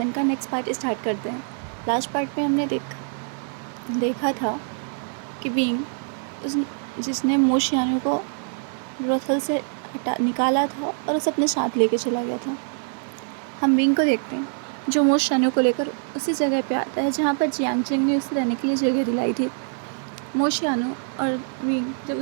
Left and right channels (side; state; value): left; silent; 62 dB below the other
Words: का नेक्स्ट पार्ट स्टार्ट करते हैं। लास्ट पार्ट में हमने देखा था कि बीइंग उस जिसने मोशियानो को ब्रोथल से निकाला था और उसे अपने साथ लेके चला गया था। हम बीइंग को देखते हैं जो मोशियानो को लेकर उसी जगह पे आता है जहाँ पर जियांग चेंग ने उसे रहने के लिए जगह दिलाई थी। मोशियानो और बीइंग जब